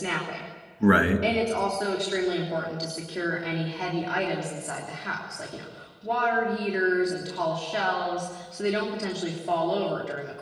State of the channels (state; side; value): identical; both; correlation 1.00